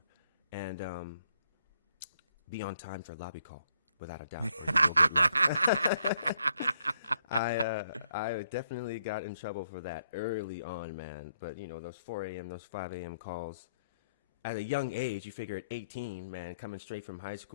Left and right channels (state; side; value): inverted; both; correlation -0.72